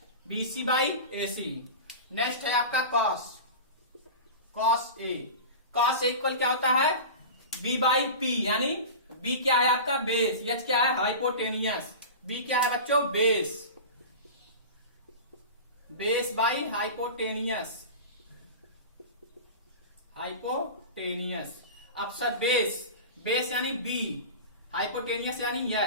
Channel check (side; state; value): both; inverted; correlation -0.30